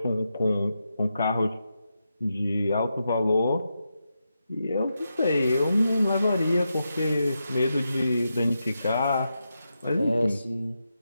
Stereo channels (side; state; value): both; inverted; correlation -0.87